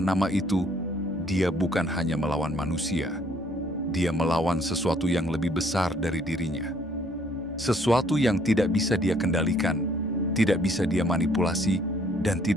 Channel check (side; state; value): both; normal; correlation 0.63